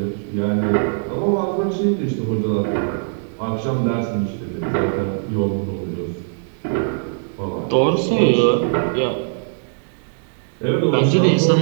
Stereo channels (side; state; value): left; silent; 65 dB below the other